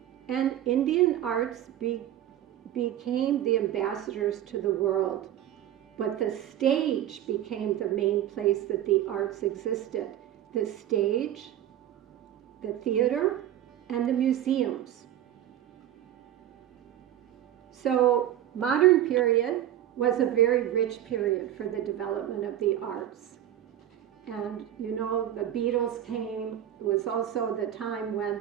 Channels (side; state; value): left; quieter; 11.7 dB